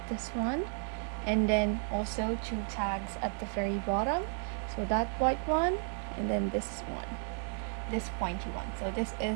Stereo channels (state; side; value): silent; left; 56 dB below the other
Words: this one, and then also 2 tags at the very bottom. So that white one, and then this one, this pointy one. So this